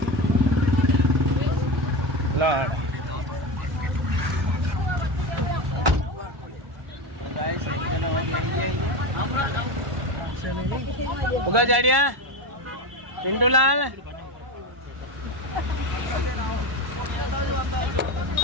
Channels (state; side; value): late; left; 1.1 ms